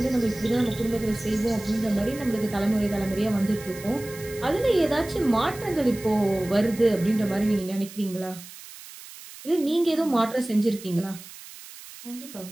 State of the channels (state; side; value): noise; right; hiss, 16 dB below the sound